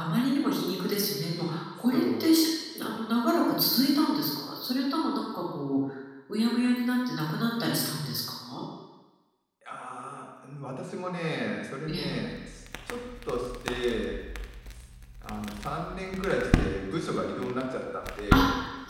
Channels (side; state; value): both; identical; correlation 1.00